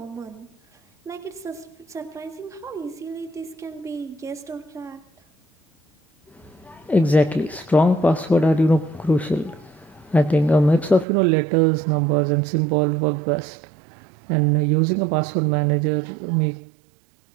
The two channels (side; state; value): left; drops out; at 11.1 s